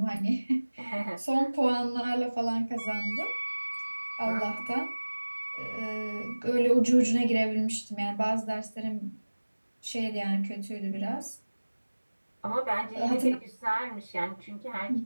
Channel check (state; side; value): inverted; both; correlation -1.00